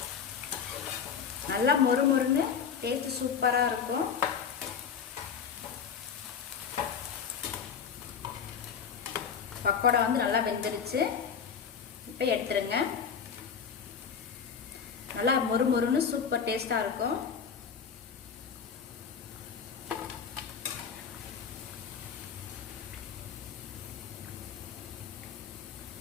நல்லா மொறு மொறுன்னு டேஸ்ட் சூப்பராக இருக்கும். பக்கோடா நல்லா வெந்துருச்சு. இப்போ எடுத்துருங்க. நல்லா மொறு மொறுன்னு சூப்பர் டேஸ்டாக இருக்கும்.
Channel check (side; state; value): right; quieter; 6.8 dB